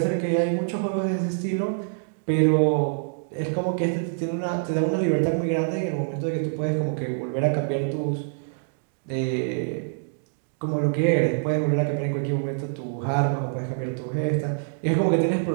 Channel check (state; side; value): silent; left; digital silence